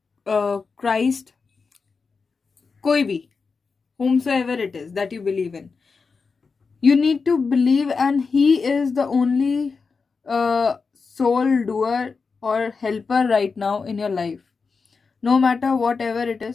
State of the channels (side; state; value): right; quieter; 4.8 dB